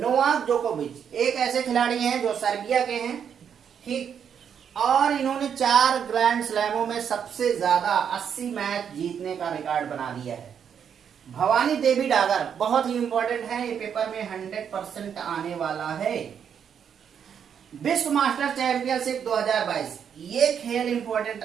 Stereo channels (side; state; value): left; quieter; 7.9 dB